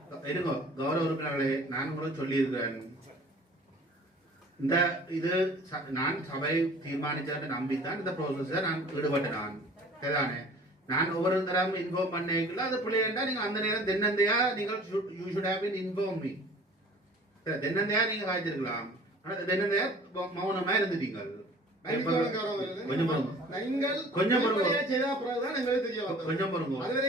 இருங்கோ. கௌரவ உறுப்பினர்களே, நான் உங்களுக்கு சொல்லி இருக்கிறேன், இந்த இது நான் சபை தீர்மானிச்சதை நம்பித்தான் இந்த ப்ரோசஸ நான் ஈடுபட்டேன். நான் சரிதானே, நான் ஒவ்வொரு தரம் இன்ஃபார்ம் பண்ணிக்கல அது பிள்ளைண்டா நீங்க அந்த நேரம் தென்னந்தையா நீங்கள் you should have been inform me. தென்னந்தையா நீங்க காய்ச்சிருக்கலாம், ஆனா தென்னந்தையா மௌனமா இருந்துட்டீங்க. கொஞ்சம்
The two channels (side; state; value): both; normal; correlation 0.48